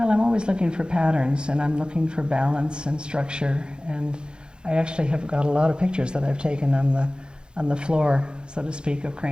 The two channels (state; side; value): late; left; 0.049 ms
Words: I'm always looking for patterns, and I'm looking for balance and structure. And I actually have got a lot of pictures that I've taken on the floor, so to speak, of